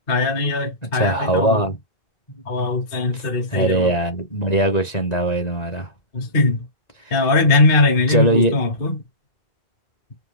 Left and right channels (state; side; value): late; right; 1.9 ms